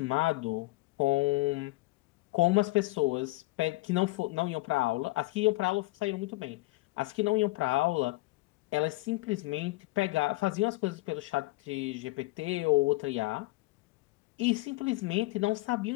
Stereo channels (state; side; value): quieter; right; 21.2 dB